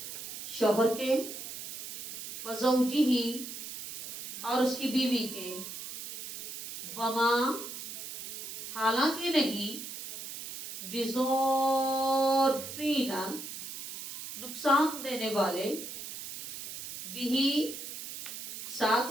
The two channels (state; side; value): noise; right; hiss, 9 dB below the sound